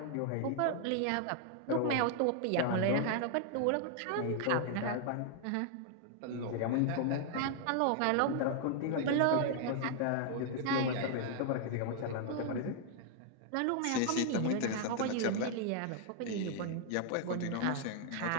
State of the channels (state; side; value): different; both; correlation 0.00